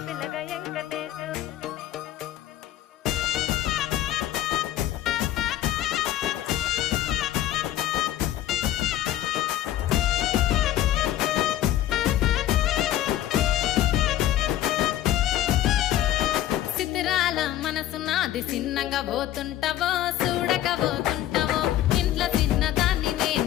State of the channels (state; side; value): quieter; right; 13.0 dB